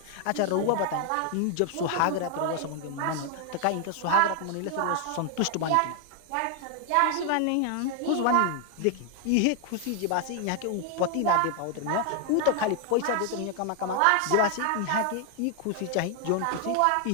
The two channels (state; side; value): different; both; correlation 0.00